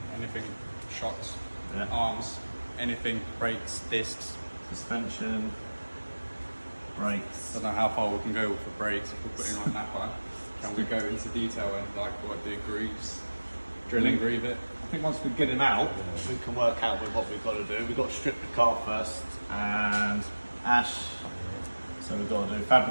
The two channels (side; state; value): both; inverted; correlation -1.00